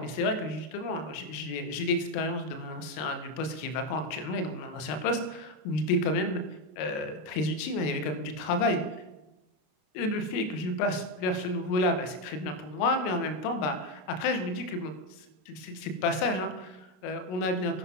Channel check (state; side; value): late; right; 33 ms